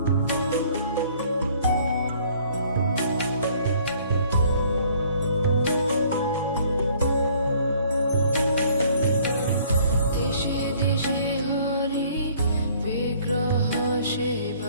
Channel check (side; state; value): both; inverted; correlation -0.58